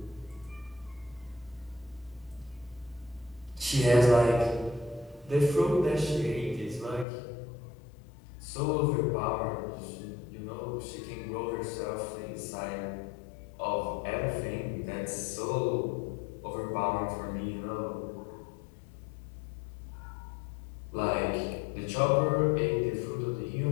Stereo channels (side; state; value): right; drops out; at 7.1 s